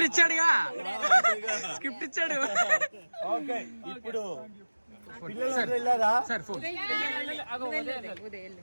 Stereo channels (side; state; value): both; inverted; correlation -1.00